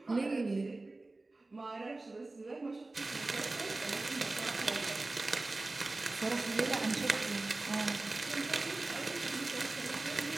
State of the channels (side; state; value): left; quieter; 3.1 dB